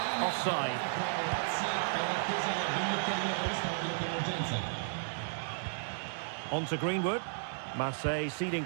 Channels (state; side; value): silent; left; digital silence